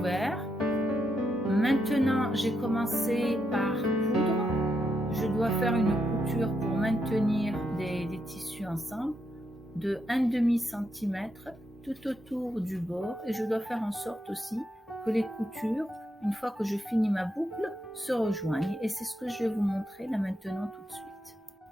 Maintenant, j'ai commencé par coudre. Je dois faire une couture pour maintenir des tissus ensemble de 1,5 cm tout autour du bord et je dois faire en sorte aussi que les coutures, une fois que je finis ma boucle, se rejoignent et c'est ce que je vais vous montrer là maintenant tout de suite.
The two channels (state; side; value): normal; both; correlation 0.81